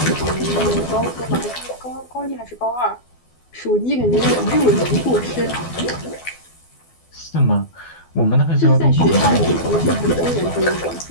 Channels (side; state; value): right; late; 12 ms